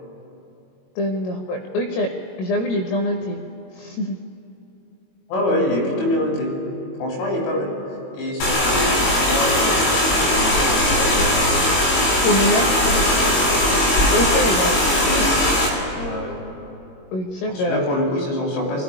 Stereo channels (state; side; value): late; right; 22 ms